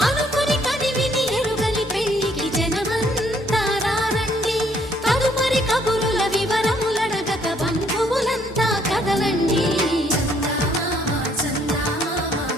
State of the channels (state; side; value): normal; both; correlation 0.66